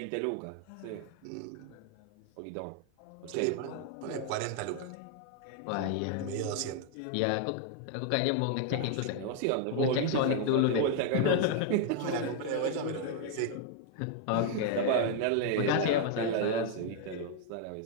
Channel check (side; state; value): both; different; correlation 0.00